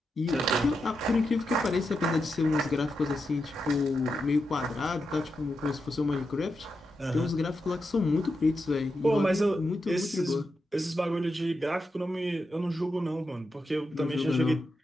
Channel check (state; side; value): normal; both; correlation 0.87